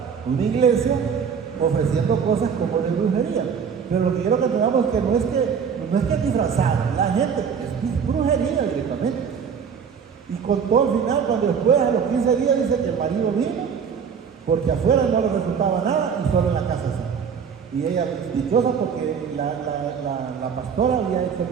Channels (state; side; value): quieter; left; 6.8 dB